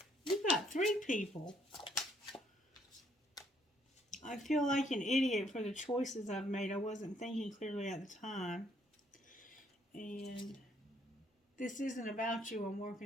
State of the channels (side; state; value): both; normal; correlation 0.67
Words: You've got 3 people. I feel like an idiot for the choices I've made. I wasn't thinking clearly at the time. And this isn't about you. I'm